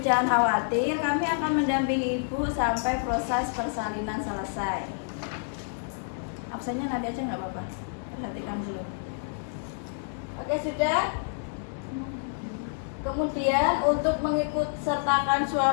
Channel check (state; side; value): silent; right; digital silence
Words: jangan khawatir, kami akan mendampingi ibu sampai proses persalinan selesai. Absennya nanti aja nggak apa-apa, perhatikan dulu. Oke, sudah. Kemudian untuk mengikut sertakan